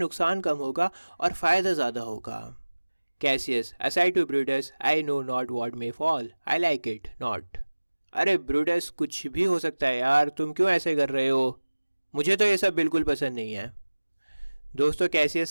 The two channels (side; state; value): both; inverted; correlation -1.00